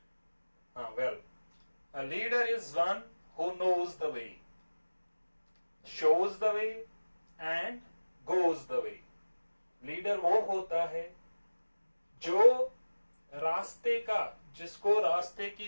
Well, a leader is one who knows the way, shows the way and goes the way. Leader वो होता है जो रास्ते का, जिसको रास्ते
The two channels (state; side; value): inverted; both; correlation -1.00